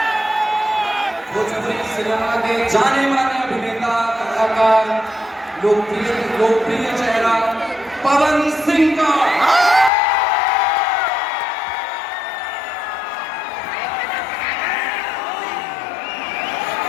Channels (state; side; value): drops out; right; at 9.9 s